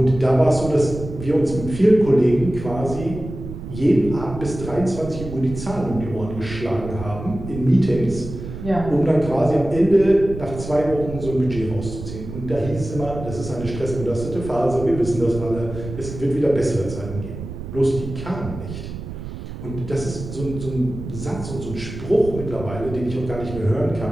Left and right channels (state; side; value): noise; right; rumble, 10 dB below the sound